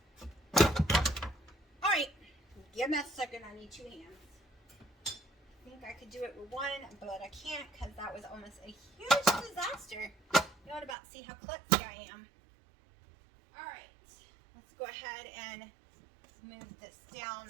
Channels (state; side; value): drops out; left; at 11.0 s